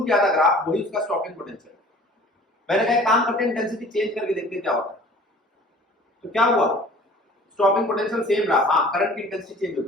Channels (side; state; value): both; normal; correlation 0.48